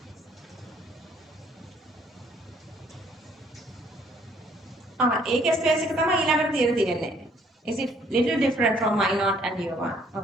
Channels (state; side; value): normal; both; correlation 0.63